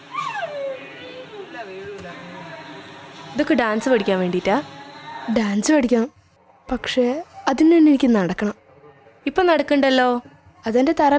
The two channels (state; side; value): identical; both; correlation 1.00